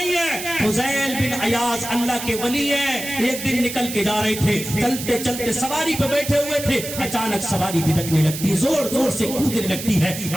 ہے. فضیل بن عیاض اللہ کے ولی ہیں, ایک دن نکل کے جا رہے تھے, چلتے چلتے سواری پہ بیٹھے ہوئے تھے, اچانک سواری بھٹکنے لگتی, زور زور سے کودنے لگتی ہے.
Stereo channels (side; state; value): right; noise; hiss, 8 dB below the sound